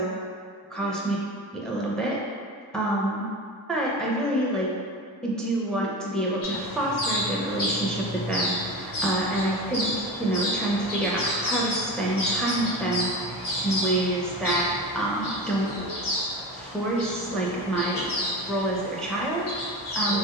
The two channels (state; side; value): normal; both; correlation 0.29